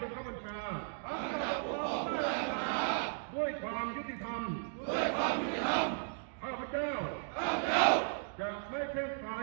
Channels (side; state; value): left; silent; digital silence